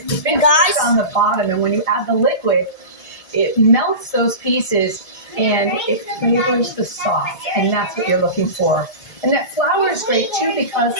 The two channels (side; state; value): right; late; 1.8 ms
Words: the And big guys- on the bottom, and when you add the liquid, it melts those pieces and it flavors the sauce, and that's what you're looking for. And that flour is great too because